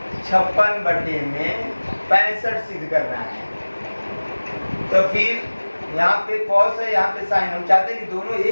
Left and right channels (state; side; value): inverted; both; correlation -1.00